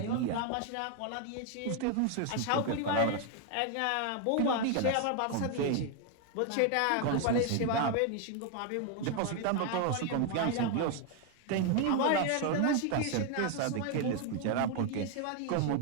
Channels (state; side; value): different; both; correlation 0.01